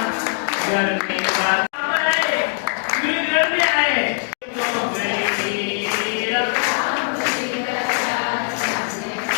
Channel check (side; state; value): right; silent; 57 dB below the other